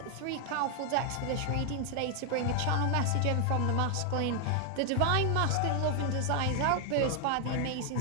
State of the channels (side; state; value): both; different; correlation 0.00